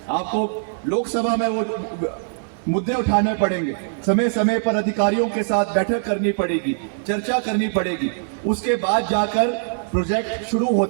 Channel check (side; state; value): left; silent; digital silence